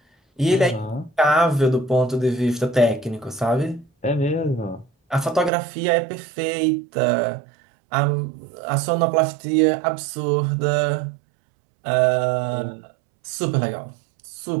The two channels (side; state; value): left; drops out; at 5.5 s